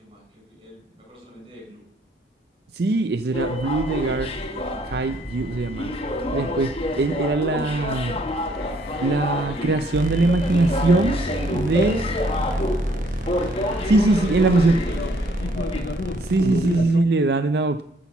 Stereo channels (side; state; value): both; normal; correlation 0.65